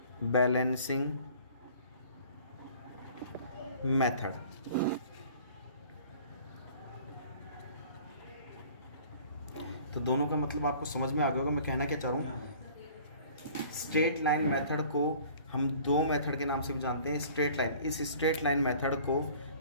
बैलेंसिंग मेथड। तो दोनों का मतलब आपको समझ में आ गया होगा मैं कहना क्या चाह रहा हूँ। स्ट्रेट लाइन मेथड को हम दो मेथड के नाम से भी जानते हैं। स्ट्रेट लाइन, इस स्ट्रेट लाइन मेथड को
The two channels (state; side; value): inverted; both; correlation -0.50